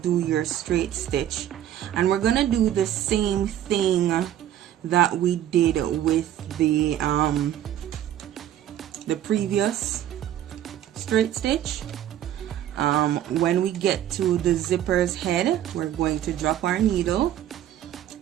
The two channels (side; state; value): left; quieter; 11.5 dB